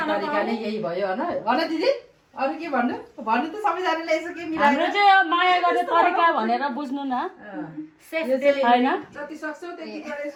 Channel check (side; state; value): both; identical; correlation 1.00